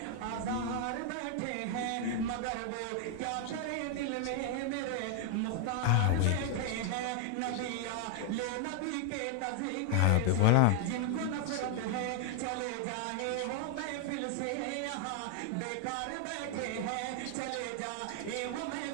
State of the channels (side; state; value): both; different; correlation 0.00